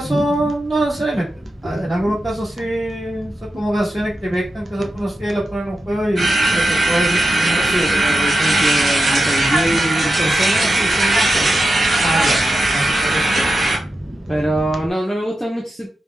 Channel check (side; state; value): both; normal; correlation 0.90